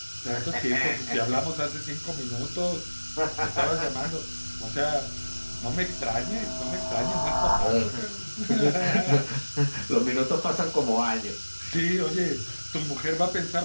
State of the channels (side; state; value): both; inverted; correlation -1.00